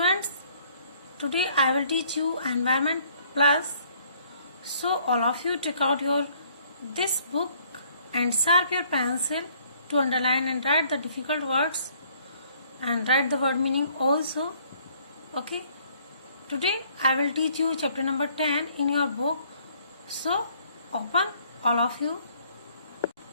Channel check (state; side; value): inverted; both; correlation -0.62